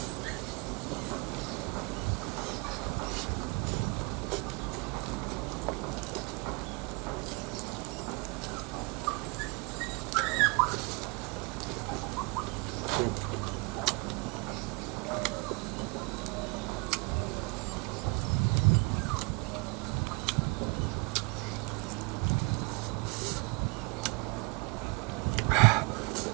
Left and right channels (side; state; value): left; quieter; 31.0 dB